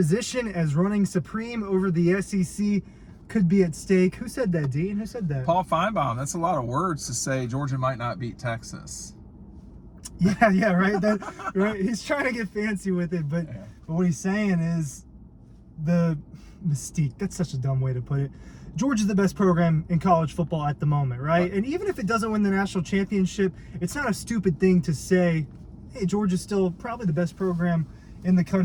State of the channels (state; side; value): identical; both; correlation 1.00